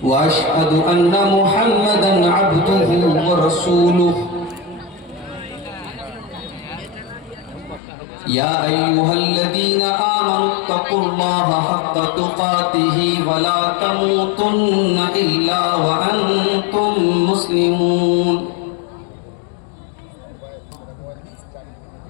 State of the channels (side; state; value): right; drops out; at 7.8 s